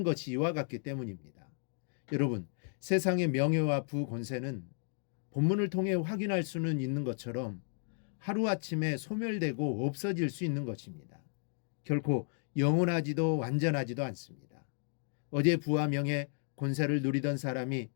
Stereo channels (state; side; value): silent; right; 55 dB below the other